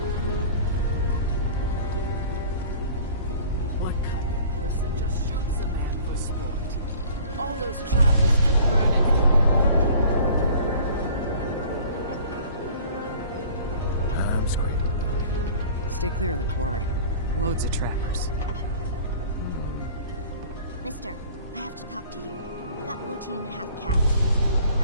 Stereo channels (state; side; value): inverted; both; correlation -0.47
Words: What kind of person just shoots a man for sport? All those trappers keep burning. I'm scraping by. Stay clear of the quarry. Loads of trappers. Mister, I have to talk to you. I got 14 and a half cats.